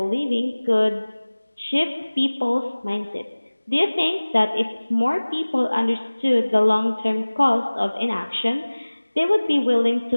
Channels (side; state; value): both; inverted; correlation -1.00